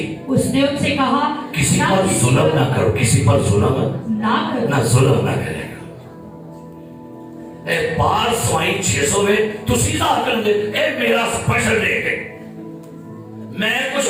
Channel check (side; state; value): both; identical; correlation 1.00